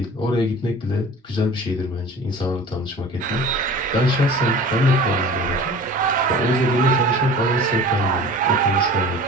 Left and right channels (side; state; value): both; normal; correlation 0.41